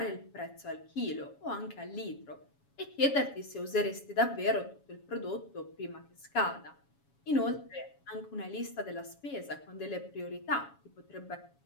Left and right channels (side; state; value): right; late; 7.2 ms